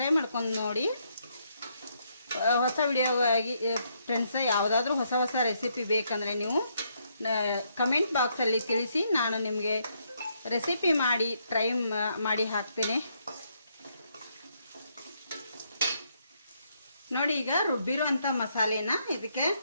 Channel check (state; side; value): inverted; both; correlation -0.74